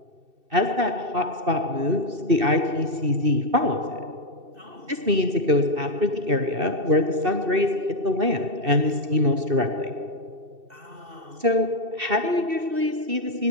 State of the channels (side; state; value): left; late; 2.7 ms